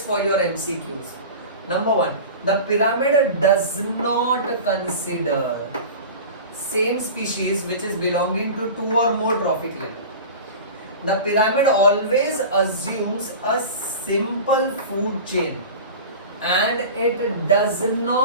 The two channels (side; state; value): both; inverted; correlation -0.33